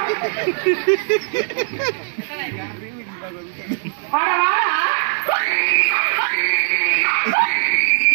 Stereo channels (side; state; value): left; silent; digital silence